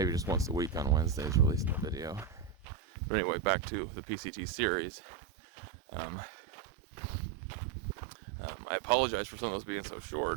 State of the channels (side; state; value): left; drops out; at 2.7 s